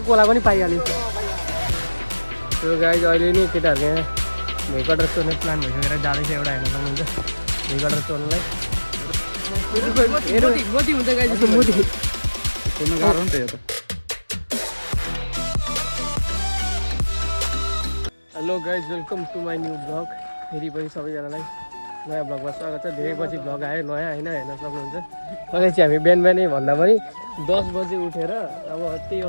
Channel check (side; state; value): both; inverted; correlation -1.00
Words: कोला पनि पाइहाल्यो त्यो गाई अहिले नि केटाहरू यहाँ भेकटर चोर्ने प्लान भइसकेर जाँदैछ एउटा हेर्न सक्नुहुन्छ भेकटर चोर्नलाई मोदी हुन्छ गाई जस्तो मोदी गाह्रो नि त यो त hello guys welcome to my new blog फेरि पनि सबैजनालाई नयाँ ब्लगमा स्वागत छ धेरै पछि ब्लग आयो नयाँ होइन हेर्न सक्नुहुन्छ अहिले चाहिँ हामी बिहान बिहानै भन्दा पनि 10 बजे उठेर अब त्यही